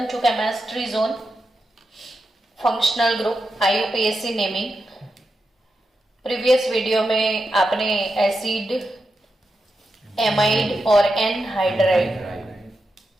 to chemistry zone functional group IUPAC naming. Previous video में आपने acid, amide और anhydride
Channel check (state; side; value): normal; both; correlation 0.88